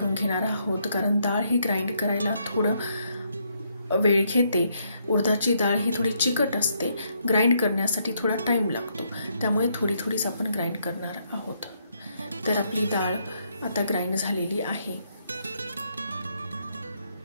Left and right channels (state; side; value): inverted; both; correlation -0.74